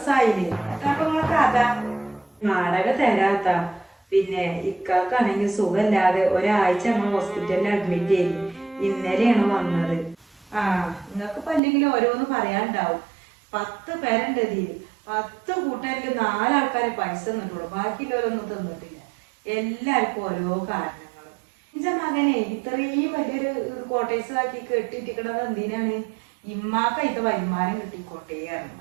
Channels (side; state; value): left; drops out; at 11.6 s